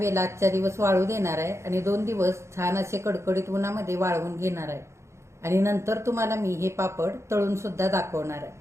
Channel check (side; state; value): left; late; 0.14 ms